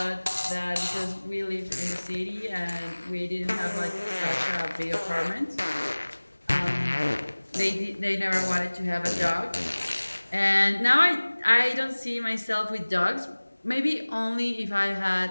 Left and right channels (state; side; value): inverted; both; correlation -1.00